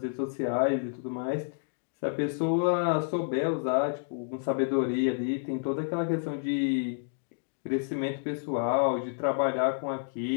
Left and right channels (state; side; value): silent; right; digital silence